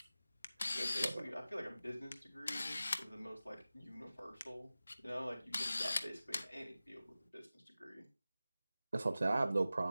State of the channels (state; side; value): inverted; both; correlation -0.96